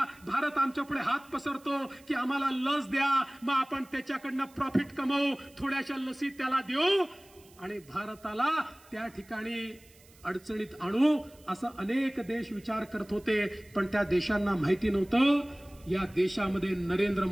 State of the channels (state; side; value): noise; right; hiss, 26 dB below the sound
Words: भारत आमच्यापुढे हात पसरतो की आम्हाला लस द्या, मग आपण त्याच्याकडनं प्रॉफिट कमवू, थोड्याशा लसी त्याला देऊ आणि भारताला त्या ठिकाणी अडचणीत आणू, असं अनेक देश विचार करत होते. पण त्या देशांना माहिती नव्हतं या देशामध्ये नरेंद्र